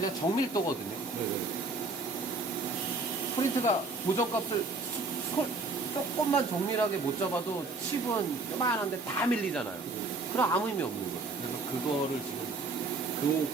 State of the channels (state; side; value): quieter; left; 3.6 dB